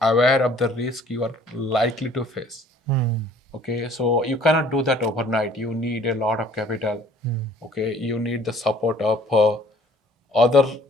aware of the risk you are likely to face. Okay, so you cannot do that overnight. You need a lot of capital. Okay, you need the support of other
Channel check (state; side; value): normal; both; correlation 0.55